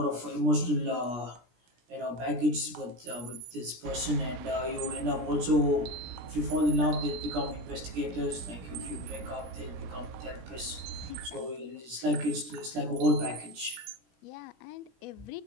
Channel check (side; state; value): left; late; 17 ms